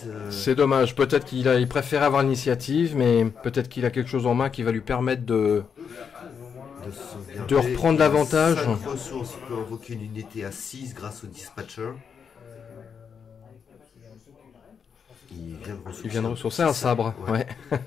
C'est dommage. Peut-être qu'il préfère avoir l'initiative, mais peut-être qu'il a quelque chose en main qui va lui permettre de reprendre l'avantage. 5 ressources, il peut invoquer une unité à 6 grâce au dispatcher. Il vient de ressourcer un sabre. Ouais. Un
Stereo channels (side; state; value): right; quieter; 6.7 dB